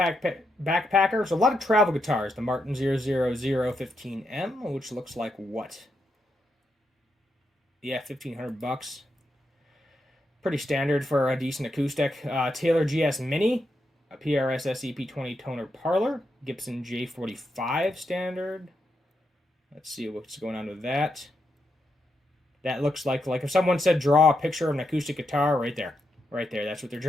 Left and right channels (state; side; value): normal; both; correlation 0.83